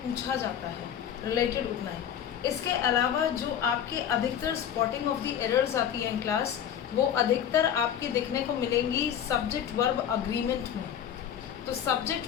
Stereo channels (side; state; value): right; quieter; 9.3 dB